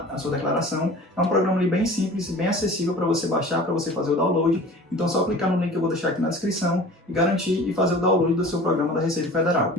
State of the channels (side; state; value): both; normal; correlation 0.42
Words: a sua declaração. É um programa ali bem simples e bem acessível para você baixar, para você fazer o download. Então é só clicar no link que eu vou deixar aqui na descrição e garantir e fazer o download do seu programa da Receita Federal.